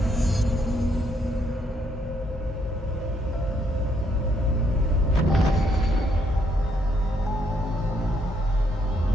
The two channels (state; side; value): normal; both; correlation 0.73